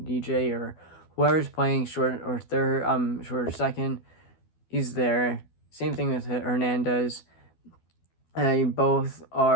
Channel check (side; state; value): right; late; 12 ms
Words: DJ or whoever's playing short or third, short or second. He's there. Same thing with Hernandez. Both